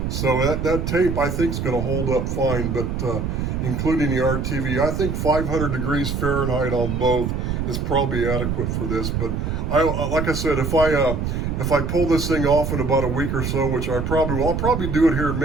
So that tape I think is going to hold up fine, but including the RTV, I think 500 degrees Fahrenheit on both is probably adequate for this. But like I said, if I pull this thing off in about a week or so, which I probably will, I'll probably do it here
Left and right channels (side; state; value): right; noise; rumble, 2 dB below the sound